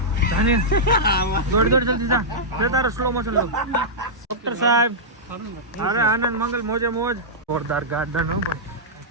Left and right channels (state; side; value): normal; both; correlation -0.11